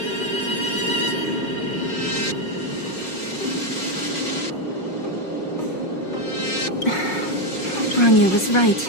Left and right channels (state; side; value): late; right; 5.5 ms